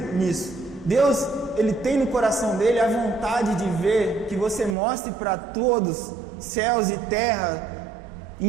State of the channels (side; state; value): left; drops out; at 4.8 s